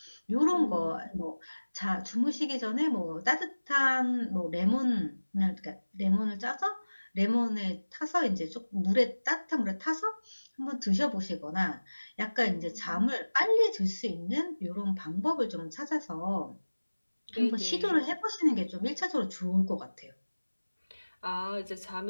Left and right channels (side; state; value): both; inverted; correlation -1.00